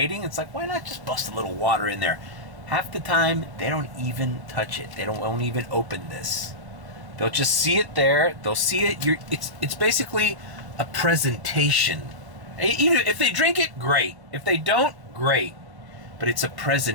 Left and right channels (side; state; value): left; late; 1.0 ms